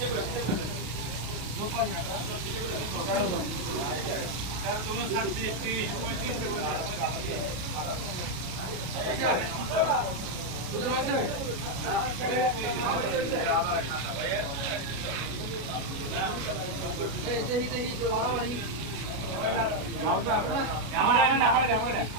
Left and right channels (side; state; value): left; late; 33 ms